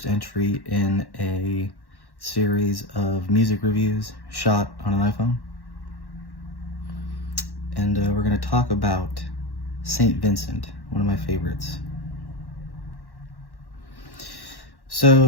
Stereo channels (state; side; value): late; right; 1.1 ms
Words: entry in a series of music reviews shot on an iPhone. And we're going to talk about St. Vincent, one of my favorites.